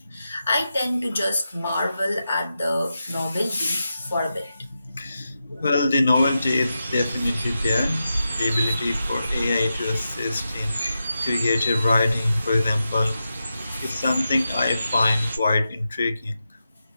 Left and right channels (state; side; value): inverted; both; correlation -0.89